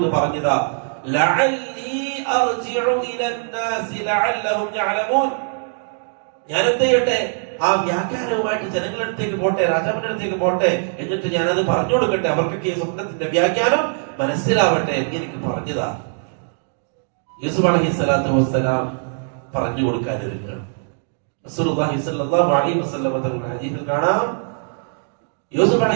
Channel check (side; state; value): left; silent; digital silence